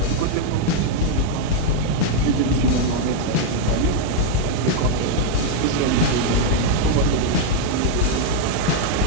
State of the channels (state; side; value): different; both; correlation 0.00